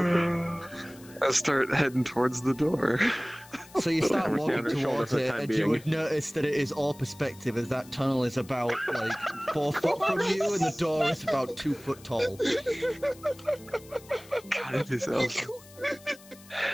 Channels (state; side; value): noise; left; hiss, 22 dB below the sound